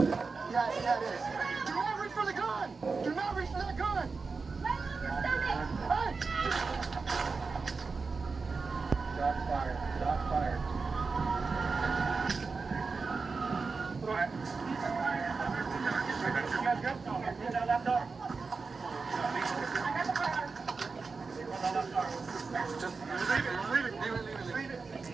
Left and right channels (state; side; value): quieter; left; 4.5 dB